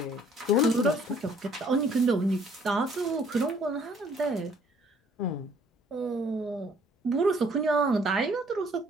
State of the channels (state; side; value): normal; both; correlation 0.60